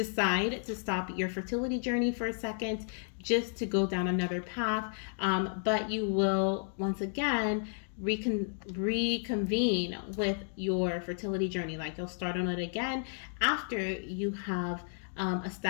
to stop your fertility journey for a second just to go down another path, but you will once again reconvene with your fertility journey. Like you'll start on it again after you have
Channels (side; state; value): right; silent; 56 dB below the other